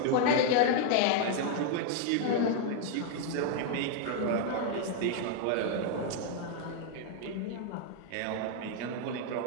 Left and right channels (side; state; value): both; different; correlation 0.00